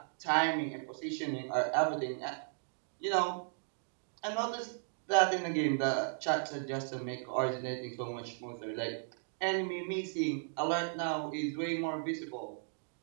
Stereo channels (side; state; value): left; silent; digital silence